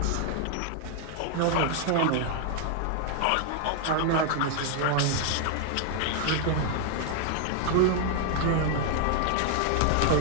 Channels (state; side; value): different; both; correlation 0.00